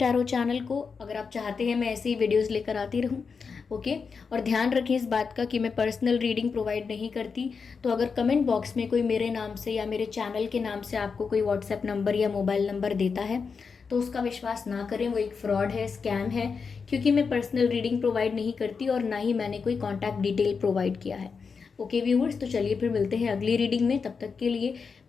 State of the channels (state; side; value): quieter; right; 5.4 dB